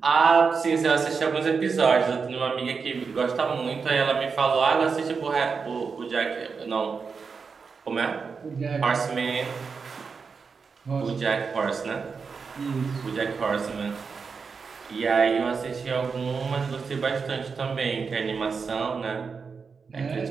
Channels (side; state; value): left; quieter; 5.3 dB